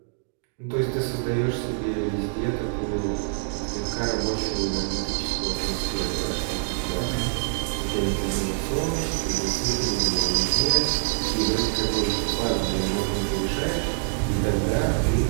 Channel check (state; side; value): silent; left; digital silence